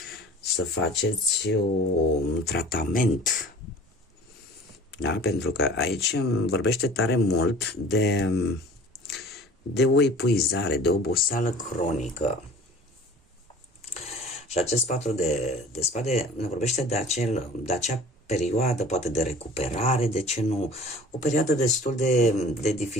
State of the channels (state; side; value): normal; both; correlation 0.45